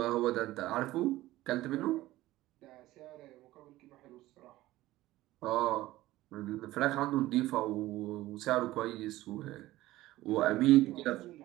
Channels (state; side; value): quieter; left; 16.7 dB